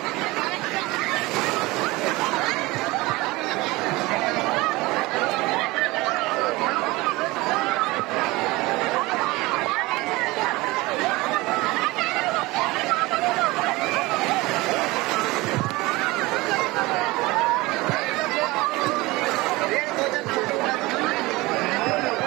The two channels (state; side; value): quieter; left; 21.4 dB